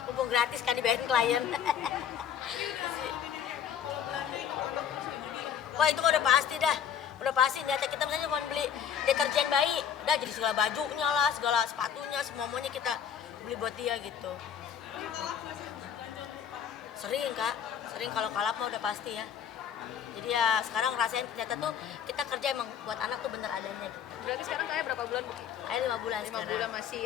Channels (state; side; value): quieter; right; 8.5 dB